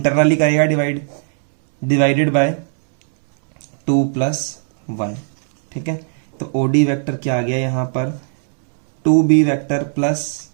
करेगा डिवाइडेड बाय 2 + 1। ठीक है, तो ओडी वेक्टर क्या आ गया यहां पर, 2b vector plus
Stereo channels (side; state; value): left; silent; 68 dB below the other